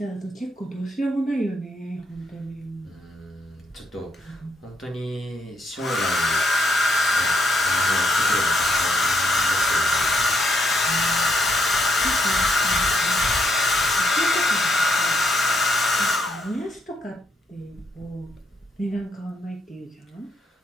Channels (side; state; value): both; normal; correlation 0.75